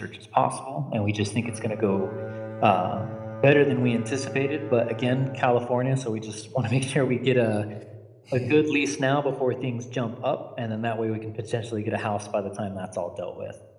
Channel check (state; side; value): identical; both; correlation 1.00